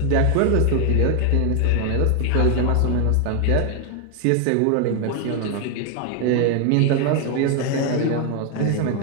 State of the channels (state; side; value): different; both; correlation 0.01